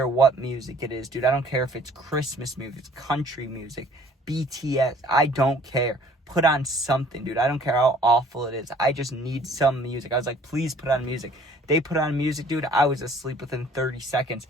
what music it is, dude. I don't care if it's Christmas music, country music, BTS. I don't care. Put on something, dude. I don't care how awful it is. I just need some music. I was like, please put on music. They put on music, dude. I was asleep within 30 seconds.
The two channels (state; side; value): normal; both; correlation 0.55